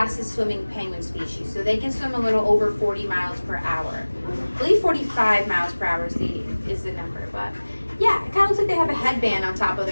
swimming penguin species. So they can swim a little over 40 miles per hour. I believe 45 miles per hour is the number, but yeah, it kind of looks like they have a headband on top of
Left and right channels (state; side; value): inverted; both; correlation -1.00